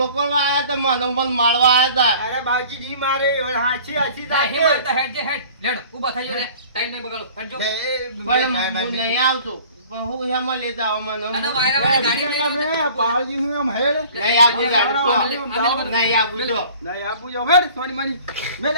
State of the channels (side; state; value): both; inverted; correlation -0.48